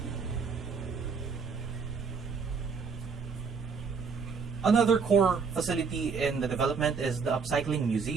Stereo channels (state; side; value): quieter; left; 5.4 dB